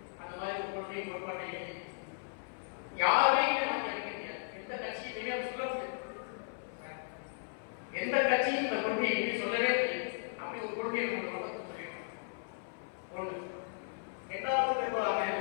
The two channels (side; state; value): right; silent; 54 dB below the other